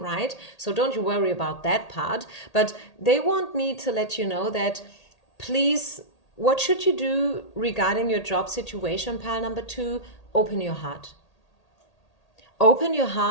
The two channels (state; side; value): late; right; 1.8 ms